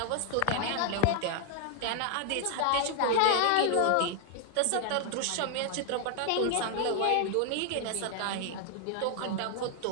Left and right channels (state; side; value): different; both; correlation 0.00